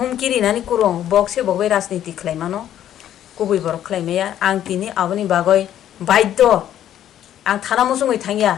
नानि कुरुं बक्से बगबै राजनीति खलायमानो कुबि बरक खलायमाया आं तिनि आबनि बागै बाध्य आं थाना मुसुङै थांगिया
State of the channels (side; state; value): right; quieter; 11.1 dB